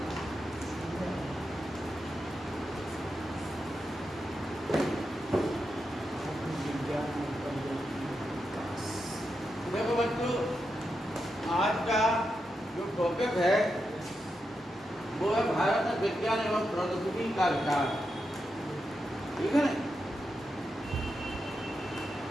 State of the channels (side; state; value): both; normal; correlation 0.86